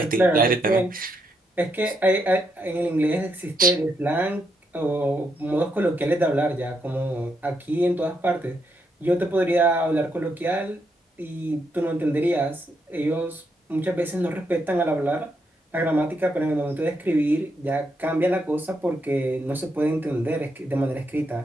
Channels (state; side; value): normal; both; correlation 0.79